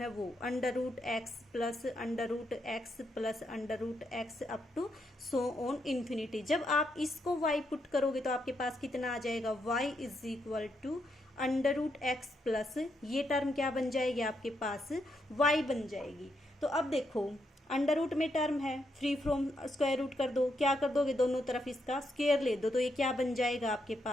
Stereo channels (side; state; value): both; normal; correlation 0.79